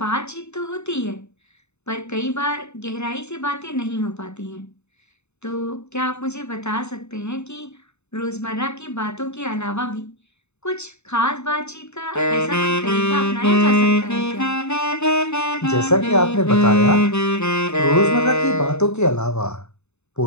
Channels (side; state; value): right; late; 0.81 ms